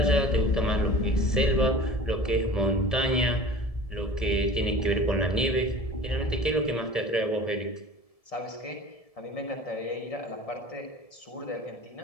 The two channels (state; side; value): late; right; 1.7 ms